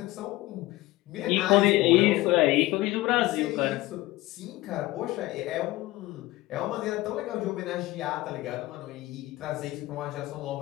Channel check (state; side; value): quieter; right; 18.6 dB